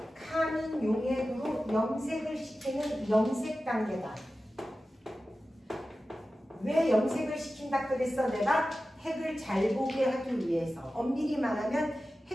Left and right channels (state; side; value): normal; both; correlation 0.94